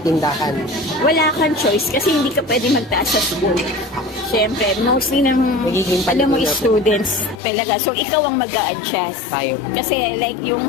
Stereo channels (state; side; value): drops out; right; at 7.4 s